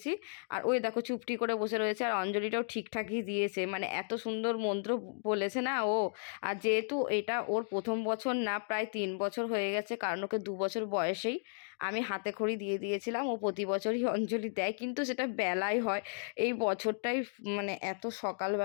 আর ওই দেখো চুপটি করে বসে রয়েছে, আর অঞ্জলিটাও ঠিকঠাকই দিয়েছে, মানে এত সুন্দর মন্ত্র বলেছে না ও। আর যেহেতু এটা ওর প্রথম বছর না, প্রায় 3 বছর হয়ে গেছে, কারণ ওকে 2 বছর বয়সেই আমি হাতে খড়ি দিয়ে দিয়েছিলাম। ও প্রতি বছরই অঞ্জলি দেয়, কিন্তু সেটা বেলায় হয়। এই বছরটাই মানে এত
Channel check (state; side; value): silent; right; digital silence